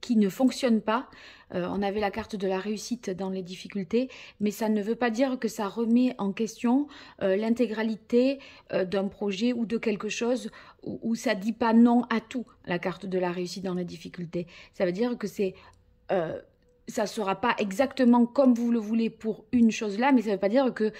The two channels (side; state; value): both; identical; correlation 1.00